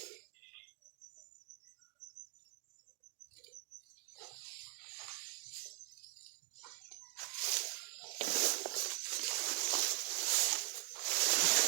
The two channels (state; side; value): quieter; left; 38.2 dB